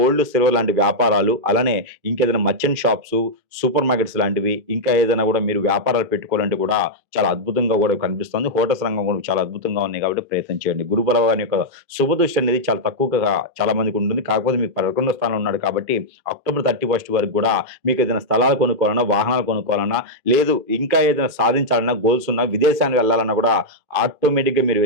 సిల్వర్ లాంటి వ్యాపారాలు, అలానే ఇంకేదైనా మర్చెంట్ షాప్సు, సూపర్ మార్కెట్స్ లాంటివి, ఇంకా ఏదైనా కూడా మీరు వ్యాపారాలు పెట్టుకోవాలంటే కూడా చాలా అద్భుతంగా కూడా కనిపిస్తుంది. హోటల్స్ రంగం కూడా చాలా అద్భుతంగా ఉన్నాయి కాబట్టి ప్రయత్నం చేయండి. గురు బలవాని యొక్క శుభదృష్టి అనేది చాలా తక్కువగా చాలా మందికి ఉంటుంది. కాకపోతే మీకు 11వ స్థానంలో ఉన్నాడు కాబట్టి అక్టోబర్ 31 వరకు కూడా మీకు ఏదైనా స్థలాలు కొనుక్కోవాలన్నా, వాహనాలు కొనుక్కోవాలన్నా, లేదు ఇంకా ఏదైనా సాధించాలన్నా, గోల్స్ ఉన్నా, విదేశానికి వెళ్ళాలన్నా కూడా ఆటోమేటిక్‌గా మీరు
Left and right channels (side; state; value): left; late; 2.5 ms